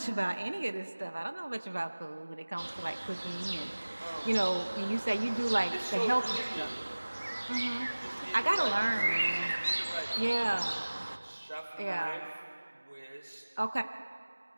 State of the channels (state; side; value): inverted; both; correlation -1.00